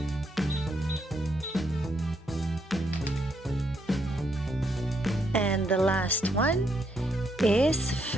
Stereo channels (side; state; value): both; normal; correlation 0.76